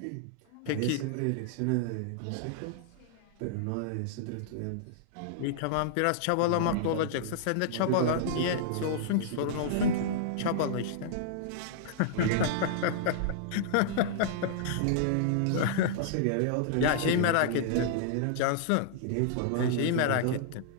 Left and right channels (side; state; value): both; different; correlation -0.02